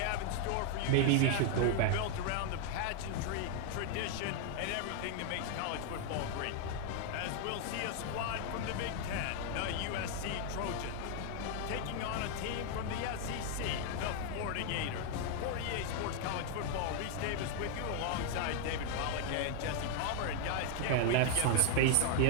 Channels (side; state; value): both; different; correlation 0.00